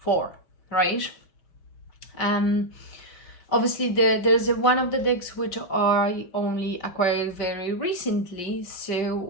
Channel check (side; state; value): right; late; 5.5 ms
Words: right? Um, Obviously there's one of the decks which I only acquired very recently,